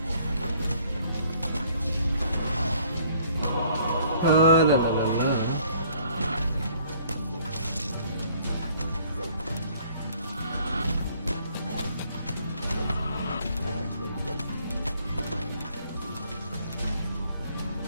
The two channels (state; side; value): inverted; both; correlation -0.60